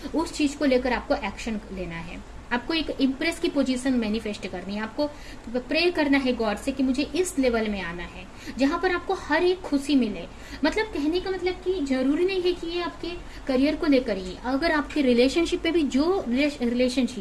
उस चीज को लेकर आपको एक्शन लेना है। आपको एक इम्प्रेस की पोजीशन मैनिफेस्ट करनी है, आपको प्रे करना है गॉड से कि मुझे इस लेवल में आना है जहां पर आपको हर एक खुशी मिले। मतलब कहने का मतलब कि जरूरी नहीं है कि ये आपके करियर को लेकर ही, अगर आपके रिलेशनशिप में भी जो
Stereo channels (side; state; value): both; identical; correlation 1.00